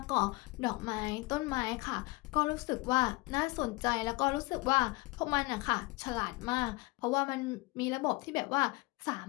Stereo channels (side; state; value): right; quieter; 23.8 dB